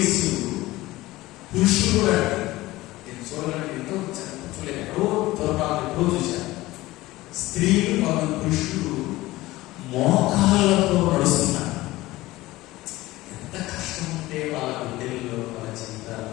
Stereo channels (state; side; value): quieter; right; 18.3 dB